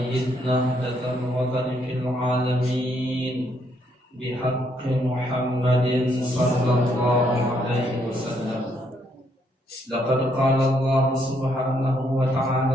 نهضة الوطن في العالمين بحق محمد صلى الله عليه وسلم. لقد قال الله سبحانه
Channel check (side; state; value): both; normal; correlation 0.72